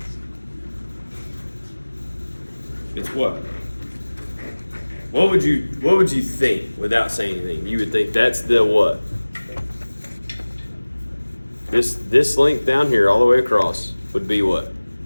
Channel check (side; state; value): both; inverted; correlation -1.00